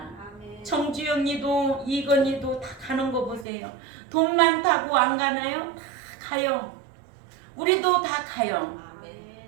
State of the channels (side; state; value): left; drops out; at 3.5 s